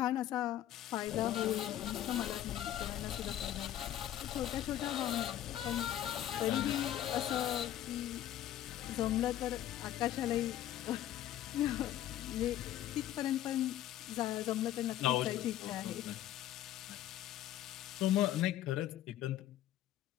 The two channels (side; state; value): right; quieter; 12.4 dB